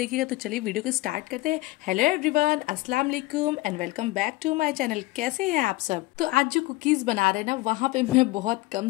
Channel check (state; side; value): quieter; right; 20.1 dB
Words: तो चलिए वीडियो को स्टार्ट करते हैं। हेलो एवरीवन, अस्सलाम वालेकुम and welcome back to my channel. कैसे हैं आप सब? तो आज जो कुकीज़ बना रहे हैं ना, वहाँ पे मैं बहुत कम